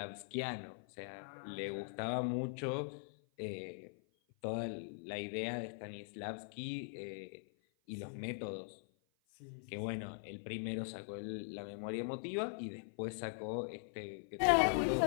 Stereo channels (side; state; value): right; silent; 50 dB below the other